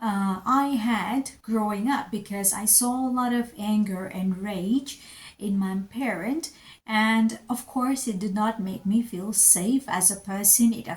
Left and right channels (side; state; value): both; identical; correlation 1.00